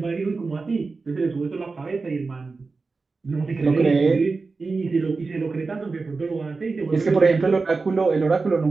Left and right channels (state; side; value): quieter; left; 4.1 dB